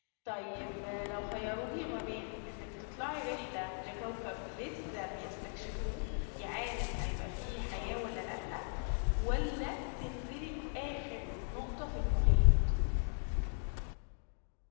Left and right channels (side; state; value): right; silent; 52 dB below the other